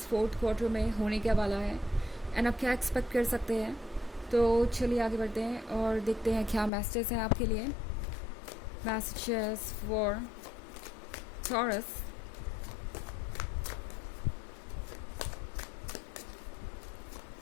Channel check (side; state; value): right; drops out; at 6.7 s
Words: फोर्थ क्वार्टर में होने क्या वाला है एंड आप क्या एक्सपेक्ट कर सकते हैं। तो चलिए आगे बढ़ते हैं और देखते हैं क्या मैसेजेस हैं आपके लिए। Messages for taurus.